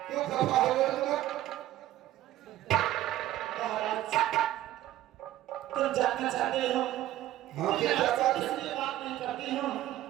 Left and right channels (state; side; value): quieter; left; 14.1 dB